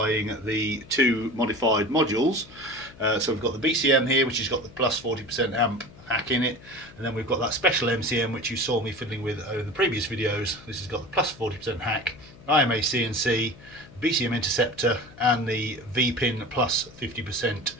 the two modified modules. So we've got the BCM here, which has got the plus 40% amp hack in it, and then we've got that special MCM which you saw me fiddling with over the previous videos. This has got the plus 40% hack, IMA CNC, BCM interceptor, and the V-pin plus 50%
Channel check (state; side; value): noise; left; hum, 21 dB below the sound